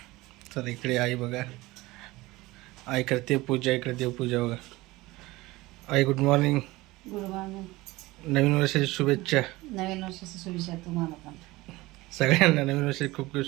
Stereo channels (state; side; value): quieter; left; 20.1 dB